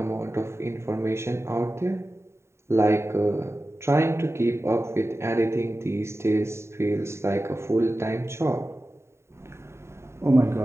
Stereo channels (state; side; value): late; left; 0.13 ms